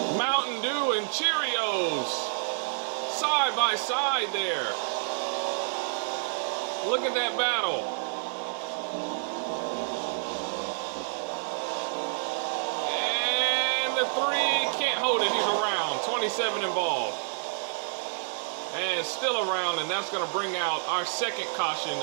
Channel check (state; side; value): silent; left; 59 dB below the other